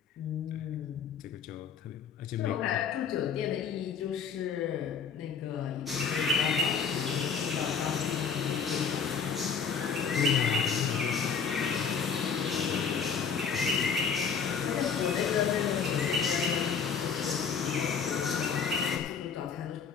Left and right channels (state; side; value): quieter; right; 6.4 dB